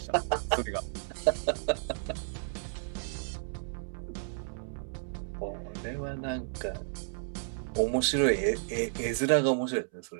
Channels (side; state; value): left; silent; 56 dB below the other